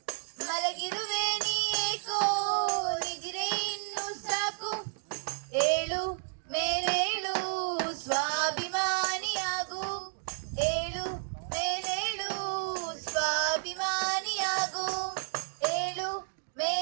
ಮಲಗಿರುವೆ ನೀ ಏಕೋ ನಿದ್ರೆ ಇನ್ನು ಸಾಕು ಏಳು ಮೇಲೇಳು ಸ್ವಾಭಿಮಾನಿಯಾಗು ಏಳು ಮೇಲೇಳು ಸ್ವಾಭಿಮಾನಿಯಾಗು ಏಳು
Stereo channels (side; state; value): left; silent; digital silence